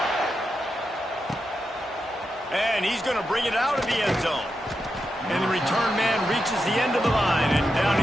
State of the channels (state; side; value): normal; both; correlation 0.87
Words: And he's going to bring it out of the end zone. And the return man reaches the end of the line, and down